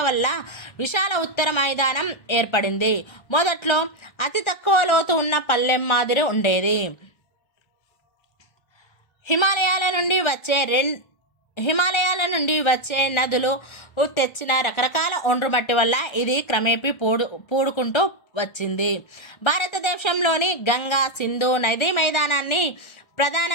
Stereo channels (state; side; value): late; right; 1.3 ms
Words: వల్ల విశాల ఉత్తర మైదానం ఏర్పడింది. మొదట్లో అతి తక్కువ లోతు ఉన్న పల్లెం మాదిరి ఉండేది. హిమాలయాల నుండి వచ్చే నదులు తెచ్చిన రకరకాల ఒండ్రుమట్టి వల్ల ఇది క్రమేపీ పూడుకుంటూ వచ్చింది. భారతదేశంలోని గంగా, సింధు నదీ మైదానాన్ని